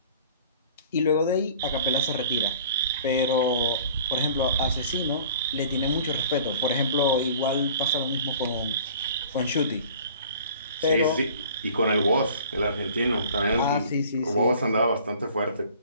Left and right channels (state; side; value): inverted; both; correlation -0.48